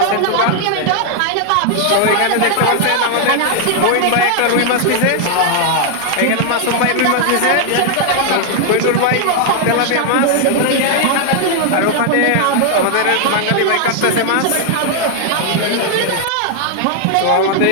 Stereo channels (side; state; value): both; different; correlation 0.00